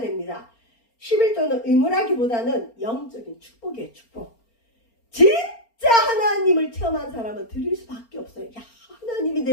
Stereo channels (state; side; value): late; right; 4.3 ms